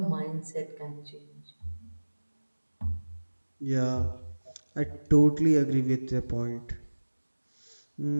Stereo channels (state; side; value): inverted; both; correlation -1.00